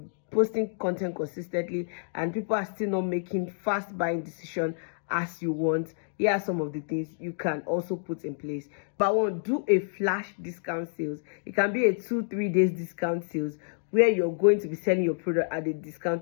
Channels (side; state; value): right; silent; digital silence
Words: posting content consistently, and people are still not making fast buying decision as you want, here are some of the things you can also put in place. But one, do a flash discount sales. It can be a 2-3 days discount sales where you're going to be selling your product at a